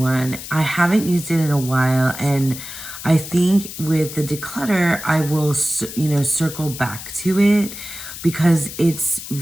I haven't used it in a while, and I think with the declutter, I will, circle back to it, because it's a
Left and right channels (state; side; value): noise; left; hiss, 11 dB below the sound